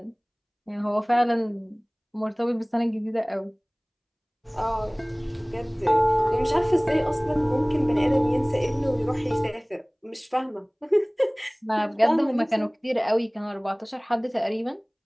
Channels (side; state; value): both; identical; correlation 1.00